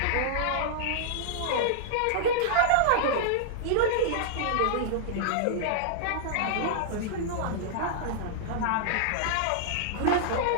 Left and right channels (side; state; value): both; different; correlation -0.01